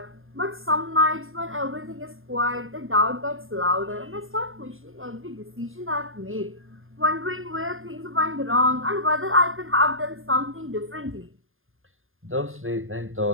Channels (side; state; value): left; late; 0.59 ms